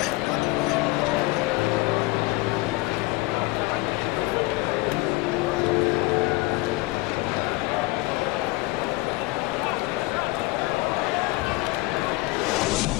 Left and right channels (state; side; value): quieter; right; 21.9 dB